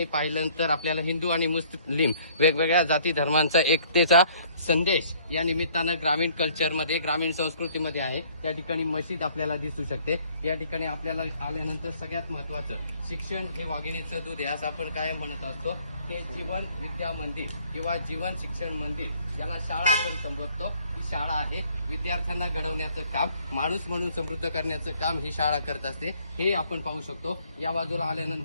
पाहिल्यानंतर आपल्याला हिंदू आणि मुस्लिम वेगवेगळ्या जाती धर्मांचा एकतेचा संदेश या निमित्तानं ग्रामीण कल्चरमध्ये, ग्रामीण संस्कृतीमध्ये आहे. या ठिकाणी मशीद आपल्याला दिसू शकते. या ठिकाणी आपल्याला आल्यानंतर सगळ्यात महत्त्वाचं शिक्षण हे वाघिणीचं दूध आहे असं आपण काय म्हणत असतो. ते जीवन विद्या मंदिर किंवा जीवन शिक्षण मंदिर याला शाळा आपण संबोधतो. ही शाळा आहे विद्यार्थ्यांना घडवण्याचं काम, माणूस म्हणून समृद्ध करण्याचं काम ही शाळा करत असते. हे आपण पाहू शकतो. या बाजूला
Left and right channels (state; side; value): inverted; both; correlation -0.60